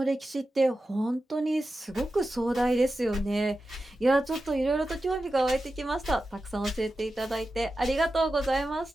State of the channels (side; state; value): both; normal; correlation 0.92